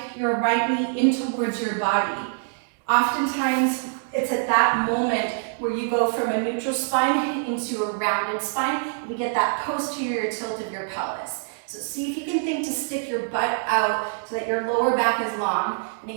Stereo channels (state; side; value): silent; left; digital silence